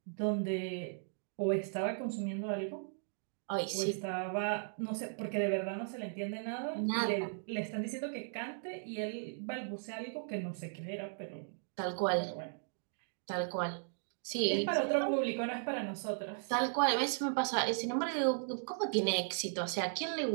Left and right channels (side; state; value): left; silent; digital silence